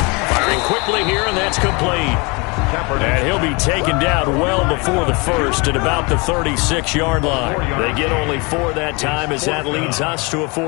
Firing quickly here, and that's complete. And he'll be taken down well before the first at about the 36-yard line. They get only 4 that time as that leads us to a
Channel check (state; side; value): quieter; right; 28.6 dB